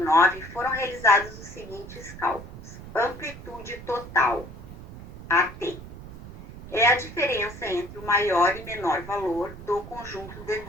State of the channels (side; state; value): right; noise; rumble, 14 dB below the sound